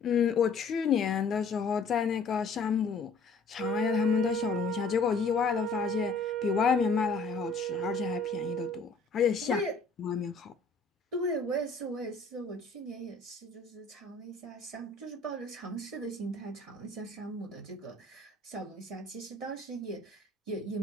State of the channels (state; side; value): quieter; right; 3.7 dB